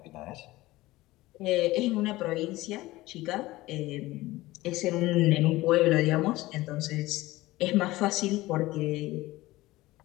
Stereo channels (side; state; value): right; quieter; 18.5 dB